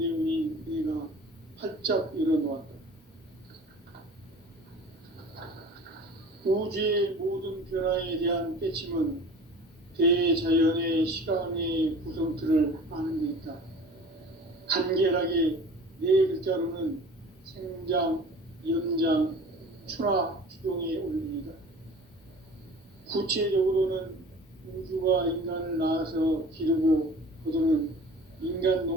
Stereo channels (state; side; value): normal; both; correlation 0.42